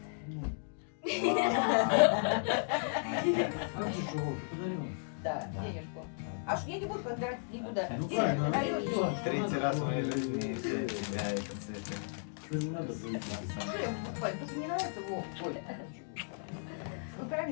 Да, денежку. Аж я не буду подбирать никуда. Ну Денег правильно, даю, всё. третий раз в моей жизни для тебя это цветы. Что я покупаю? Тут не нравится, Вов. Ой. Ну,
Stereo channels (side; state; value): right; silent; digital silence